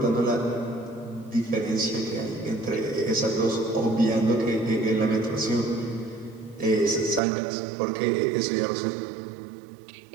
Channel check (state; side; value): drops out; left; at 7.2 s